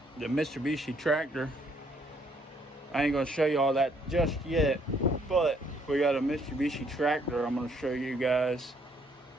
the Mitsubishi tractor. I ain't gonna show you all that just yet, but we got a Mitsubishi tractor I'm gonna show you guys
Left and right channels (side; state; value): both; normal; correlation 0.67